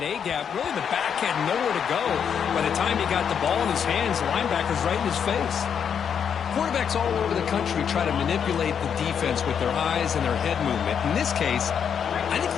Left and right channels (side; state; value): right; quieter; 7.6 dB